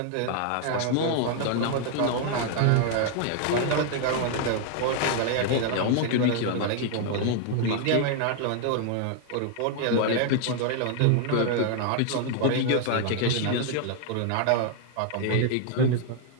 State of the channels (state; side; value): different; both; correlation 0.00